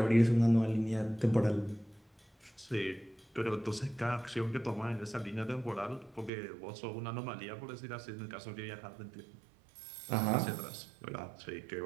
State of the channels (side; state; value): left; drops out; at 6.3 s